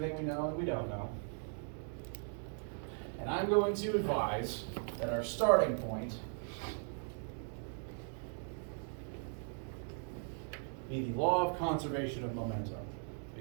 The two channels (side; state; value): left; silent; 52 dB below the other